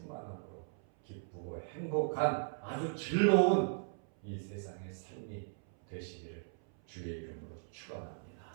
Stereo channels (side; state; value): left; silent; 53 dB below the other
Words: 기쁘고 행복한 아주 즐거운 이 세상의 삶이 되시기를 주의 이름으로 축원합니다.